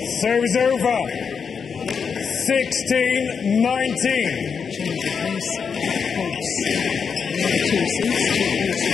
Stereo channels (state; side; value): quieter; right; 6.2 dB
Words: Serves over. 16-19. Change of pace. Holds the other 2 seats. 2 minutes